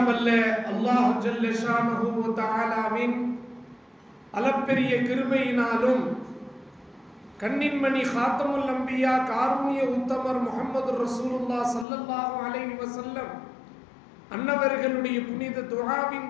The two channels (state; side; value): drops out; right; at 11.9 s